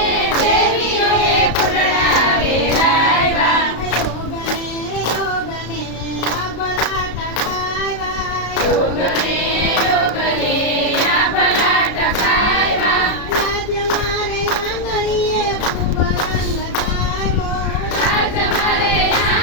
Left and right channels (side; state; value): right; late; 33 ms